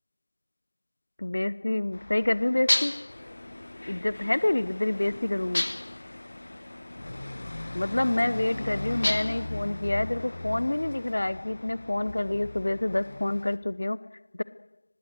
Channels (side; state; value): both; inverted; correlation -1.00